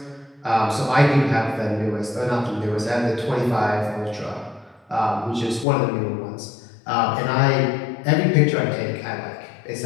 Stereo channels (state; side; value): drops out; right; at 5.7 s